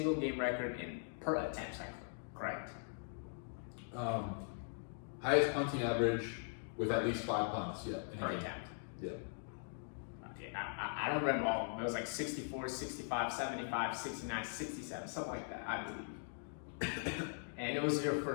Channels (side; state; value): right; silent; digital silence